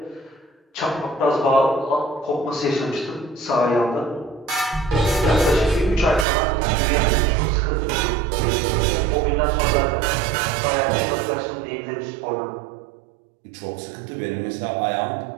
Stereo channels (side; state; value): left; drops out; at 6.2 s